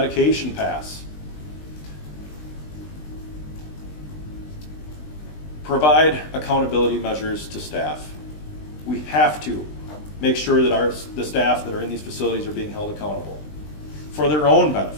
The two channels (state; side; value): late; right; 20 ms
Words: pass. Provide accountability measures to staff. we have to make sure that the staff that are in these facilities are being held accountable for their own